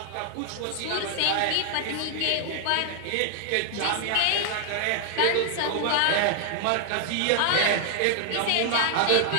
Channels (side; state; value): both; different; correlation 0.00